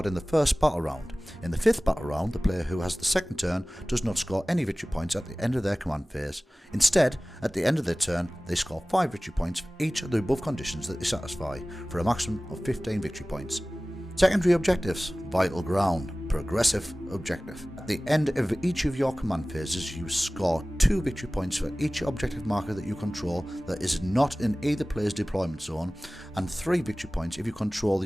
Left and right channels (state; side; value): normal; both; correlation 0.98